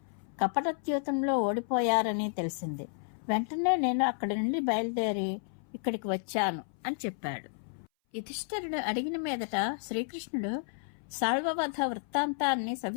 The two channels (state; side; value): silent; right; 57 dB below the other